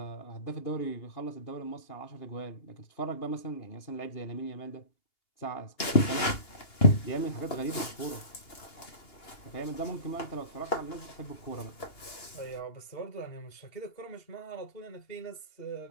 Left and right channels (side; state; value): right; late; 2.9 ms